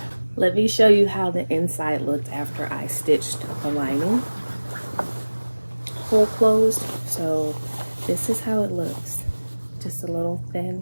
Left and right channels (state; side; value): inverted; both; correlation -1.00